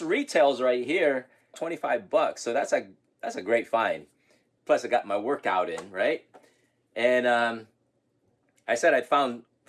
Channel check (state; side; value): identical; both; correlation 1.00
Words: retails right here $25, so that's a great find. Plus I got my workout in, right? And I said I found